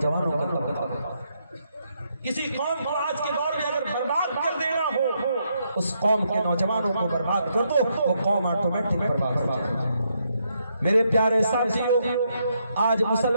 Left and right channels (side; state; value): both; inverted; correlation -0.77